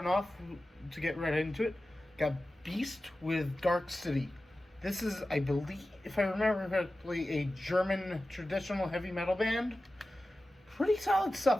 off, to get right into it, got Beast with Dark City. This is, I believe, if I remember correctly, a German traditional heavy metal band. Pretty solid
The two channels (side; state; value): both; normal; correlation 0.95